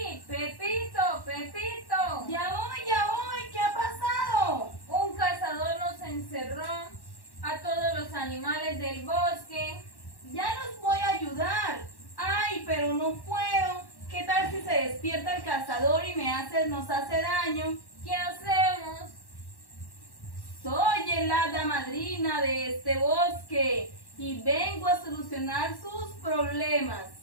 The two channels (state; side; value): late; right; 1.1 ms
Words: Pepito, Pepito. Ya voy. ¿Qué ha pasado? Un cazador nos encerró a todos los animales del bosque. Ya los voy a ayudar. Ay, pero no puedo. ¿Qué tal si se despierta el cazador y nos hace daño? ¿Qué hacemos? Soy el hada madrina de este bosque y vengo a solucionar sus problemas.